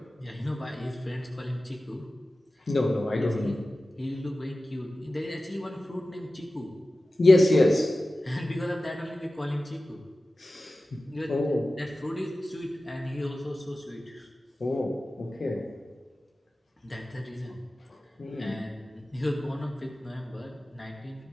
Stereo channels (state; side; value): normal; both; correlation 0.95